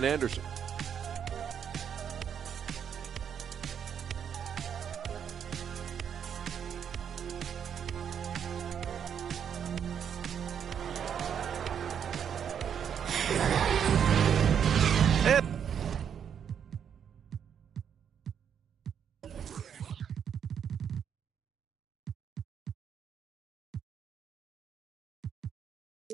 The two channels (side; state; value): left; quieter; 8.1 dB